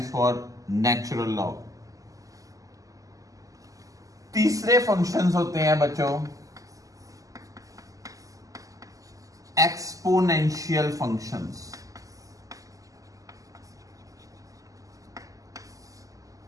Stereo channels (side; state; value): left; late; 0.17 ms